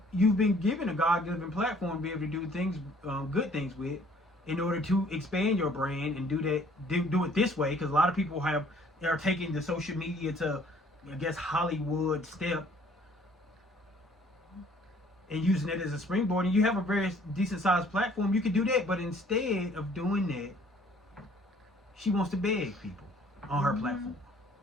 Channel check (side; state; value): both; normal; correlation 0.58